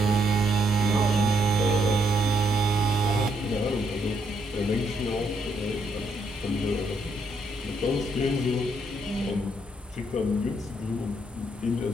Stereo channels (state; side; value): normal; both; correlation 0.74